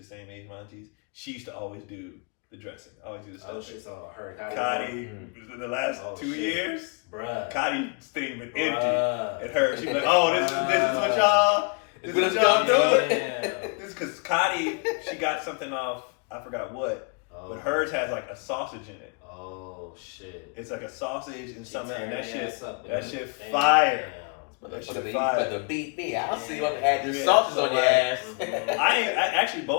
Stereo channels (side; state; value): right; quieter; 34.7 dB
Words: same age as my aunties. She used to always do the dressing, always do the stuffing. Oh shit, so her Kati, the last 2 years, bruh. Kati's thing been empty. And her, she'd be like, oh, this is what y'all doing? This because Kati, she got something off, I forgot what, but hers has like a sausage in it. Oh shit! It's like a sausage and something, and that shit fire. That shit You fire. got to beat me. I'll see what add your Yeah, sauces so on your like- ass. I actually